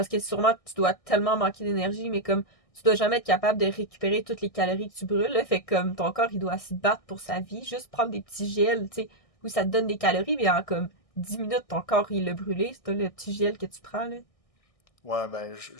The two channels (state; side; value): late; right; 1.6 ms